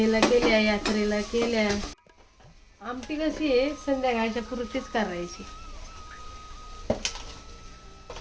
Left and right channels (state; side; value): identical; both; correlation 1.00